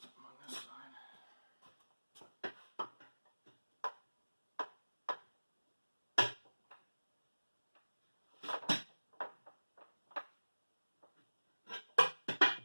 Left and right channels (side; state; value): both; inverted; correlation -1.00